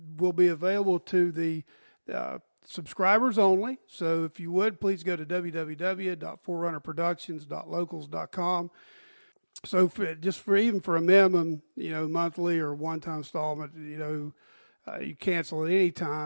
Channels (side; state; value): both; inverted; correlation -1.00